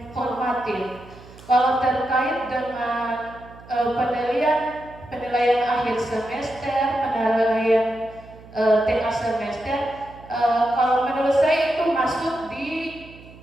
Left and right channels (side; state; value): right; noise; hum, 20 dB below the sound